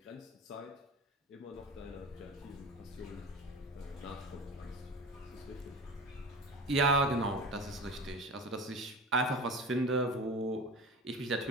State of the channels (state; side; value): normal; both; correlation 0.33